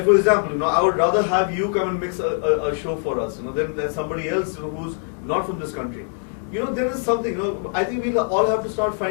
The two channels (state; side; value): silent; right; 57 dB below the other